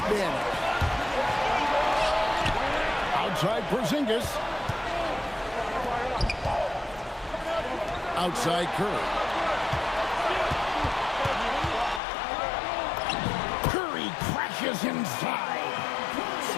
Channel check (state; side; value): drops out; right; at 12.0 s